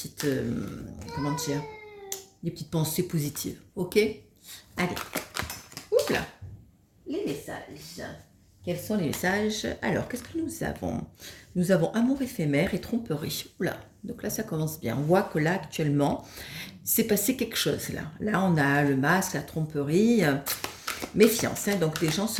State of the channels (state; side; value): identical; both; correlation 1.00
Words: comment dire, des petites pensées positives. Ok? Allez, oups là, les messages. Quels sont les messages? Alors, qu'est-ce que nous avons? Nous avons amour éphémère et tromperie. Oula, donc là, ça commence bien. On voit que là, actuellement, c'est passé quelque chose. Là on a le masque, la tromperie, méfiance. Hein, donc, des gens